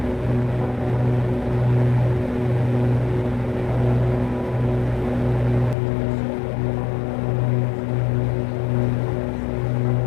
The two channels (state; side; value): drops out; right; at 5.8 s